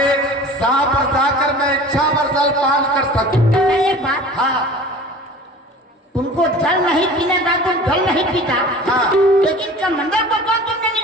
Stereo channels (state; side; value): normal; both; correlation 0.41